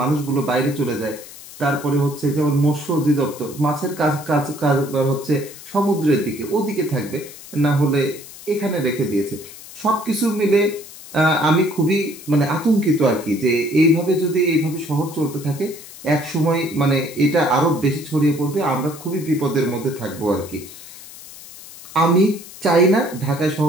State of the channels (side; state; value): left; noise; hiss, 16 dB below the sound